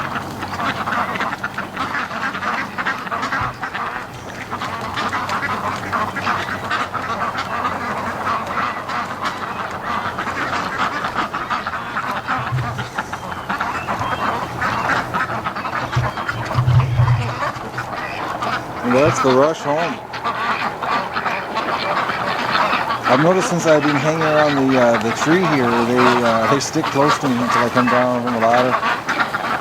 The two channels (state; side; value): identical; both; correlation 1.00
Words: And that's the rush home. I've noticed since I've been hanging around the tree here, they stick close to me until I come down from the ladder.